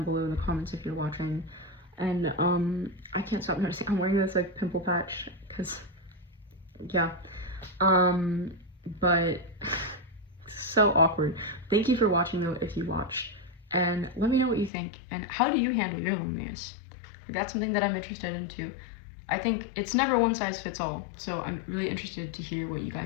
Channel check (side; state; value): right; drops out; at 14.7 s